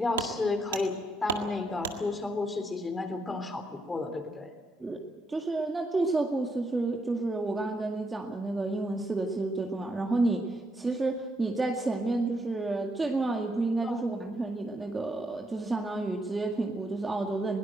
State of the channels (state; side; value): normal; both; correlation 0.77